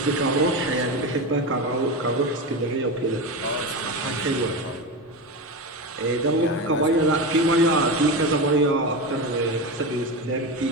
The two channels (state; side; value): normal; both; correlation 0.20